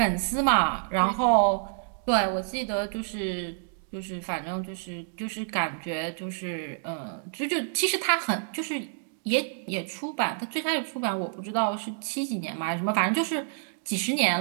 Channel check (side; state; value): left; silent; digital silence